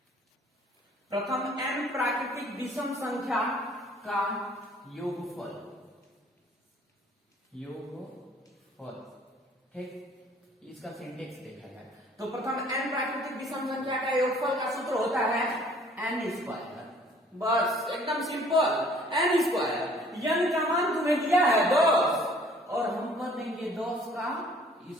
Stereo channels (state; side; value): normal; both; correlation 0.56